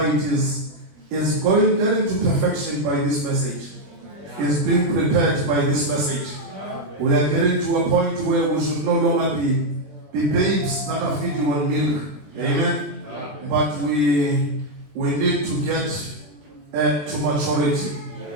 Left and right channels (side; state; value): left; late; 20 ms